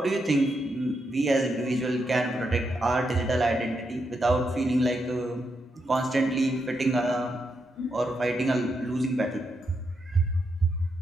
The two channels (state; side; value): normal; both; correlation 0.82